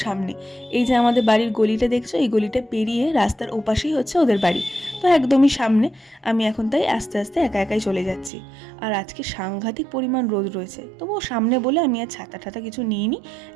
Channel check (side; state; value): left; drops out; at 8.3 s